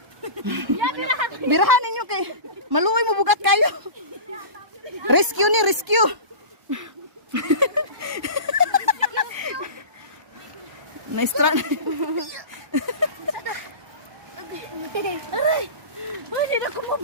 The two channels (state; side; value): late; left; 1.1 ms